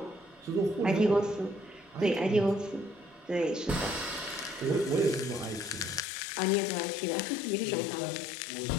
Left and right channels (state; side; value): drops out; right; at 6.1 s